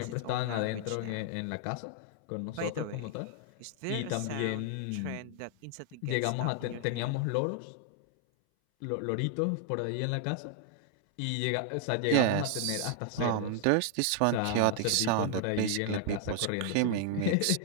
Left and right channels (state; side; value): different; both; correlation 0.00